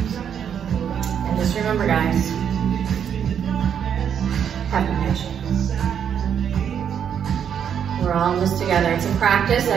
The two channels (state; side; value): quieter; left; 8.3 dB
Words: And just remember, guys, have patience. We're all in this together. It's a practice